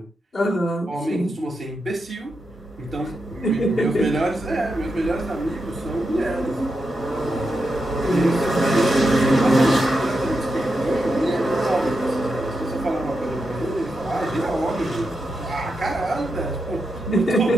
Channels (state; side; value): normal; both; correlation 0.86